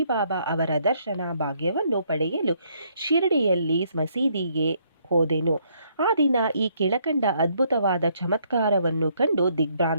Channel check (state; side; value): inverted; both; correlation -0.69